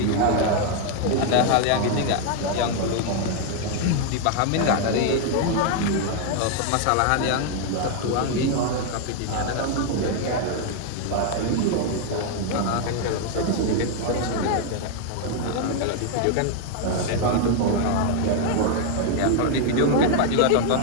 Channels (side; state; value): both; different; correlation 0.00